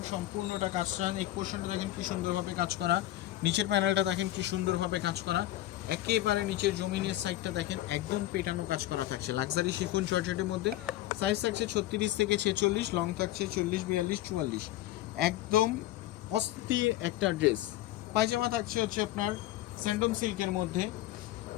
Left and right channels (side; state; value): right; quieter; 15.0 dB